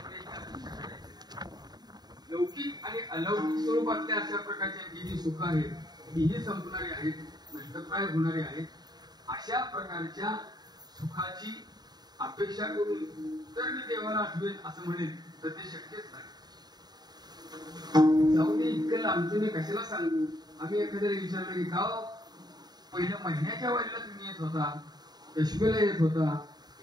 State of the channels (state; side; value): late; left; 0.20 ms